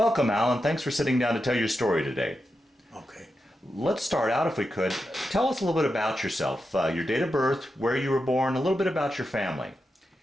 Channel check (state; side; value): normal; both; correlation 0.88